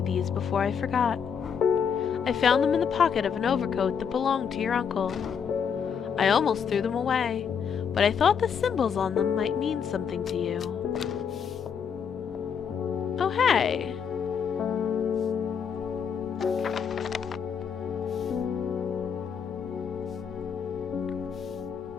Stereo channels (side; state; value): right; quieter; 7.0 dB